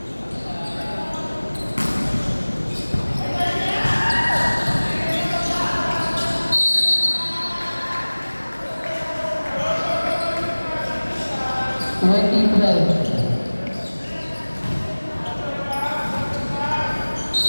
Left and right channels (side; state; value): both; inverted; correlation -1.00